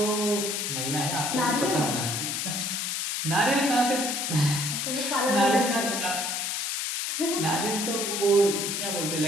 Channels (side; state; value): left; noise; hiss, 1 dB below the sound